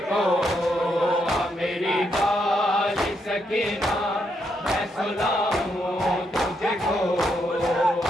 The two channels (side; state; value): both; normal; correlation 0.78